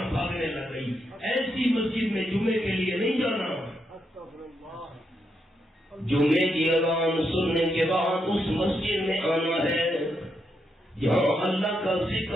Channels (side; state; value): both; normal; correlation 0.81